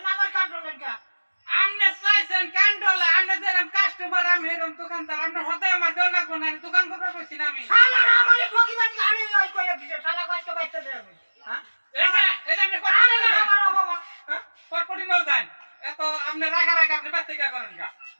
না আমার কান্ডল লেখা আমনে চাইছেন কান্ডলা আমনে যেরকম কাস্টমার আমি এরকম দোকানদার আমনে হতাই আমার দেন লাগবো না দোকান করতে বসছি না আমি শালা আমারে ঠকিবানি আমি ওই কইয়া দিছে শালা কষ্ট বাইতে দে আমি হ্যাঁ এই যে আপনি কট আরে করে না আমার বাবা হ্যাঁ কট করে নাও যান এত আমনে রাখা আপনি বাচ্চা করেন গা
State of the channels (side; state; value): both; inverted; correlation -1.00